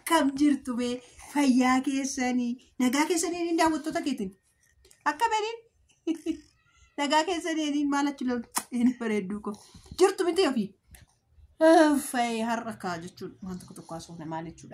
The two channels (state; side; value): identical; both; correlation 1.00